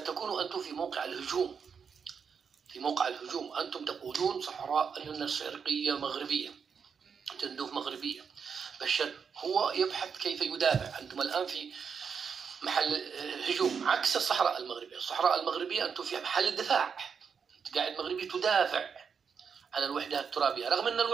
أنتم في موقع الهجوم، في موقع الهجوم. أنتم تقولون صحراء الشرقية مغربية، تندوف مغربية. بشار هو يبحث كيف يدافع، أنتم الآن في محل هجوم عكس الصحراء المغربية. الصحراء المغربية أنتم في محل الدفاع، أنت قاعد مغربي تدافع عن الوحدة الترابية، رغم أن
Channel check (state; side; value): quieter; left; 6.4 dB